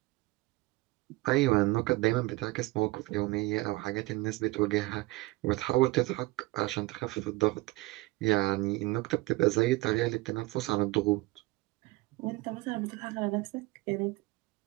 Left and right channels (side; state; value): left; quieter; 20.7 dB